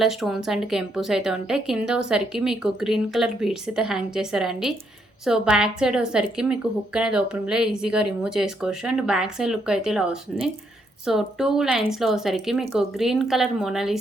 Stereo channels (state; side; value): normal; both; correlation 0.75